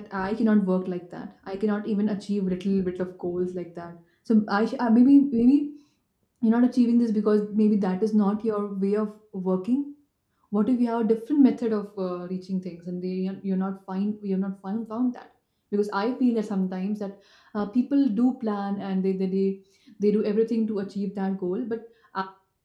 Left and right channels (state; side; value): identical; both; correlation 1.00